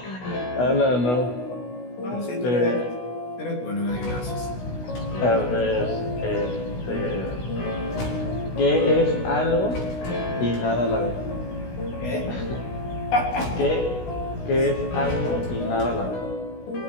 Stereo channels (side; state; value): right; late; 16 ms